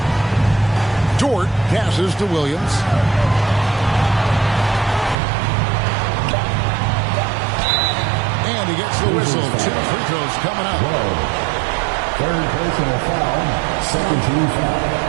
Dort passes to Williams. And he gets the whistle. 2 free throws coming up. Third personal foul. Second team foul.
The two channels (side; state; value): left; drops out; at 5.2 s